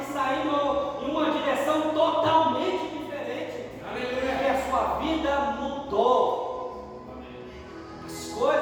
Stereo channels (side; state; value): both; identical; correlation 1.00